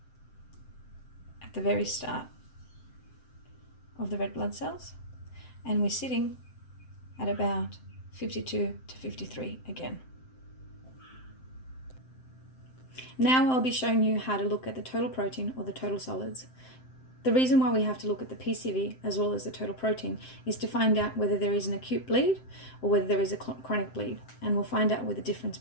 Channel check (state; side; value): late; right; 7.7 ms